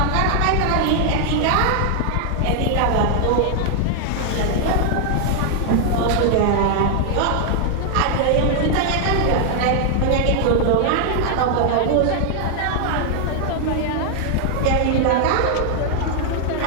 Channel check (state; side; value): different; both; correlation 0.00